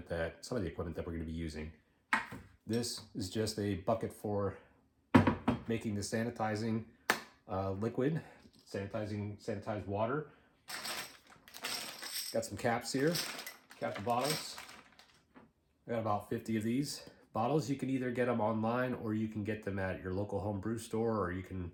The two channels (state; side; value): identical; both; correlation 1.00